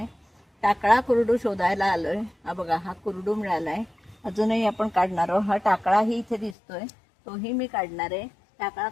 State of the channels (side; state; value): right; drops out; at 6.6 s